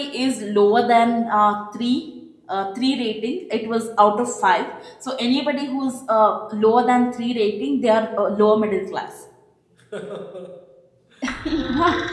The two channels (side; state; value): both; identical; correlation 1.00